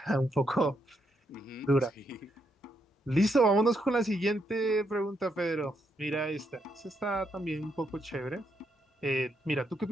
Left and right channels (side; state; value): both; normal; correlation 0.78